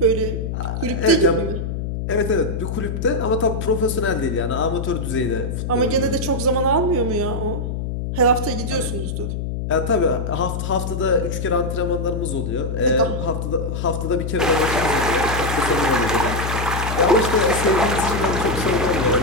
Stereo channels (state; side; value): noise; left; hum, 3 dB below the sound